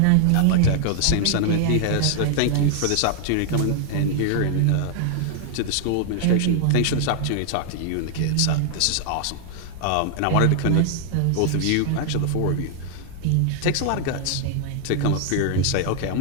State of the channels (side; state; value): both; different; correlation 0.00